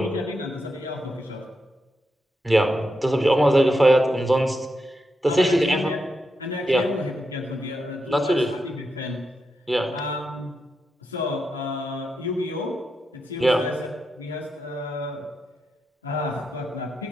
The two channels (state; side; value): normal; both; correlation 0.85